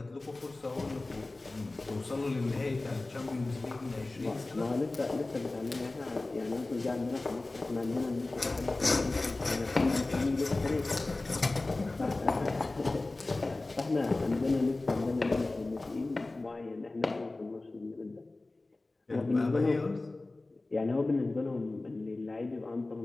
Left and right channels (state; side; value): quieter; right; 3.1 dB